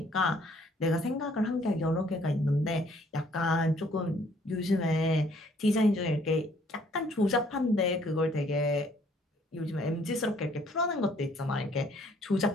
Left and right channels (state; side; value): normal; both; correlation 0.62